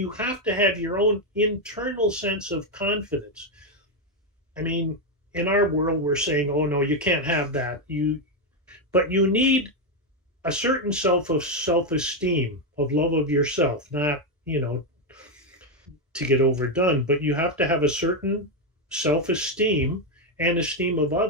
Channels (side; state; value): both; normal; correlation 0.05